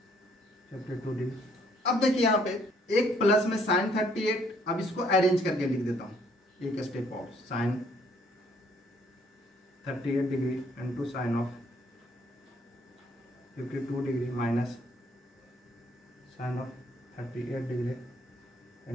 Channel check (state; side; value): normal; both; correlation 0.65